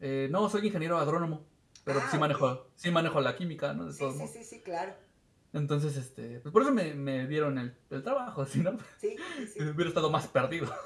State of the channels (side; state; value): both; identical; correlation 1.00